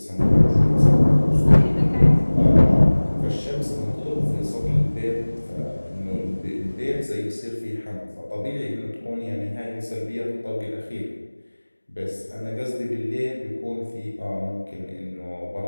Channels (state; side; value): inverted; both; correlation -1.00